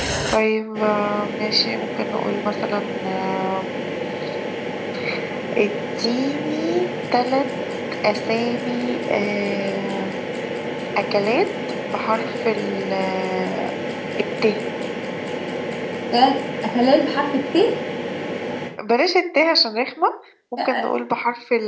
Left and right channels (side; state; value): both; identical; correlation 1.00